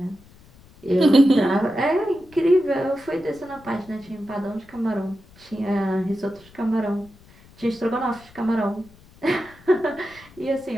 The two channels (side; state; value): left; noise; rumble, 25 dB below the sound